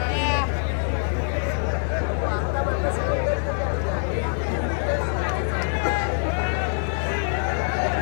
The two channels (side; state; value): right; silent; 61 dB below the other